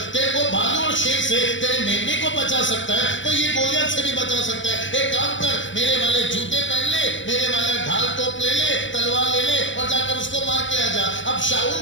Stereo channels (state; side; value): late; right; 0.55 ms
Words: तेरे को भालू और शेर से, तेरे मेमने को बचा सकता है तो ये गोलियत से भी बचा सकता है। एक काम कर, मेरे वाले जूते पहन ले, मेरे वाला ढाल टोप ले ले, तलवार ले ले और जाकर उसको मार के आ जा। अब शाऊल